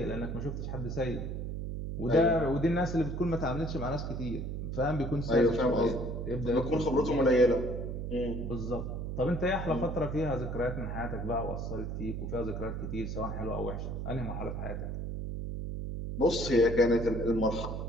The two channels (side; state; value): right; noise; hum, 4 dB below the sound